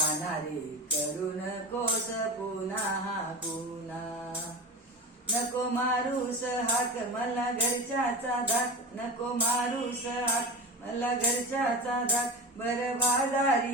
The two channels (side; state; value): both; normal; correlation 0.27